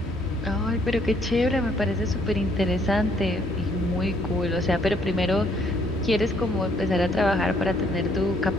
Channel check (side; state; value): both; normal; correlation 0.66